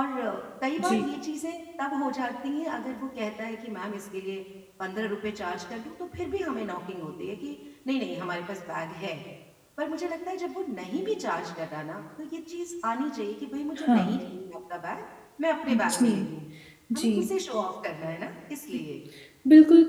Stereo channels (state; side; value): identical; both; correlation 1.00